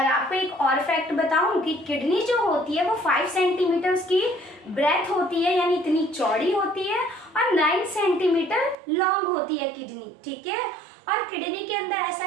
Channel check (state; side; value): drops out; left; at 8.8 s